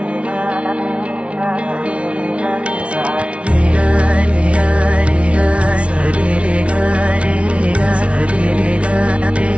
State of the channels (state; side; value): late; left; 0.061 ms